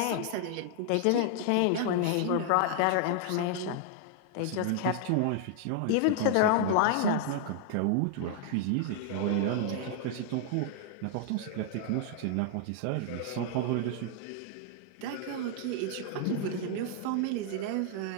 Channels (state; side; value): different; both; correlation 0.00